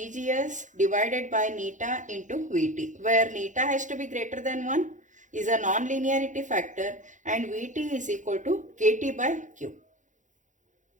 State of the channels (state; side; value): late; left; 0.36 ms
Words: divided by neta into VT, where neta has to be greater than 1 is a non-linearity factor and Vt is equal to Kt by Q.